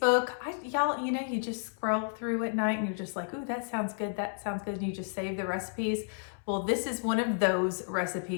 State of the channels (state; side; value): silent; right; 57 dB below the other